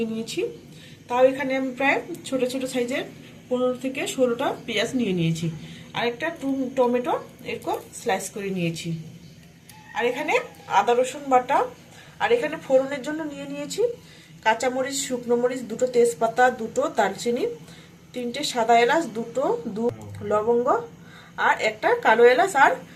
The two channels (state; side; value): identical; both; correlation 1.00